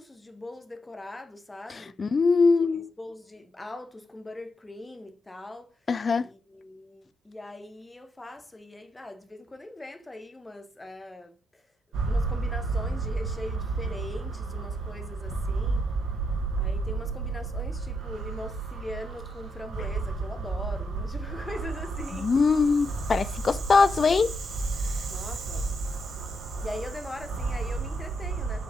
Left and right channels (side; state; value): both; normal; correlation 0.81